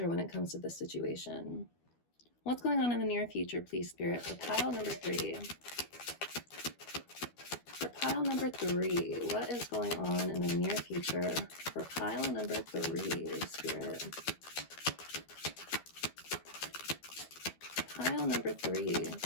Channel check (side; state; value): right; late; 12 ms